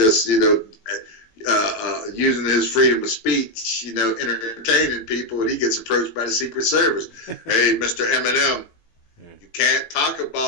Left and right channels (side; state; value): right; late; 18 ms